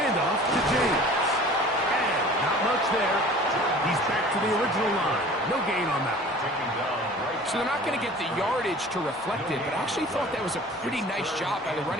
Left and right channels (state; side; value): normal; both; correlation 0.45